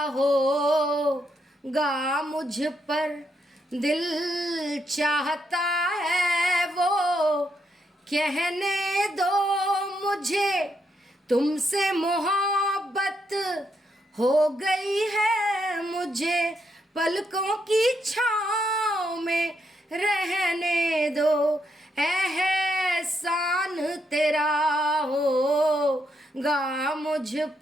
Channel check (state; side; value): normal; both; correlation 0.78